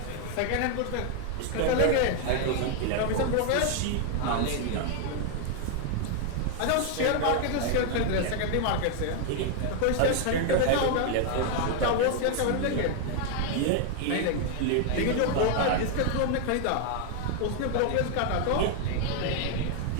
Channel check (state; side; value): different; both; correlation 0.00